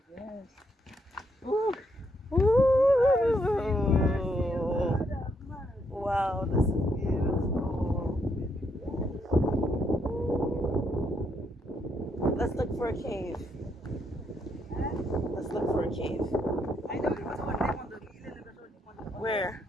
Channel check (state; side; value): normal; both; correlation 0.76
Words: yes. Ooh. Ooh. Wow, this is beautiful. Let's look for a cave. Let's look for a cave. I know it was one day on the Where?